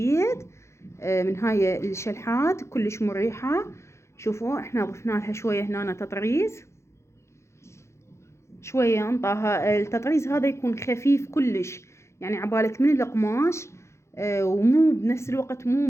من هاي الشلحات كلش مريحة. شوفوا احنا ضفنا لها شوية هنا تطريز، شوية انطاها التطريز هذا يكون خفيف كلش، يعني عبالك من القماش ومو بنفس الوقت مو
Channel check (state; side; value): late; right; 0.13 ms